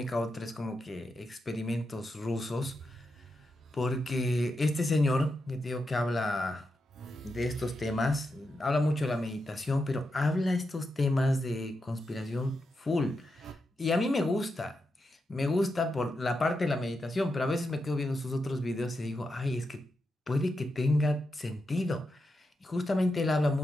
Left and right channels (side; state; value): both; normal; correlation 0.86